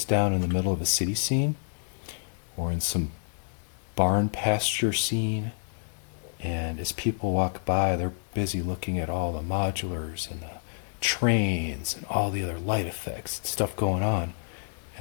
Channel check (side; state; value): right; silent; digital silence